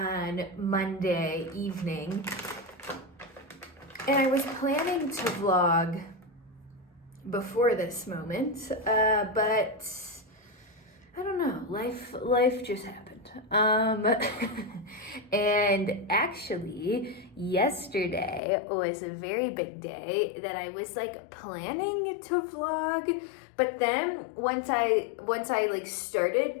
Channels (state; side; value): drops out; right; at 18.4 s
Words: Monday evening, and I was planning to vlog before this moment, but I don't know, life just happened. And actually, yesterday was a very big day that I was like planning to vlog, but then once I